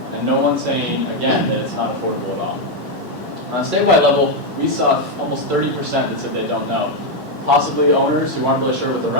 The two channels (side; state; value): both; normal; correlation 0.03